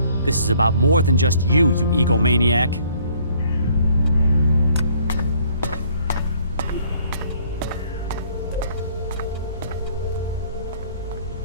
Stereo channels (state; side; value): inverted; both; correlation -0.61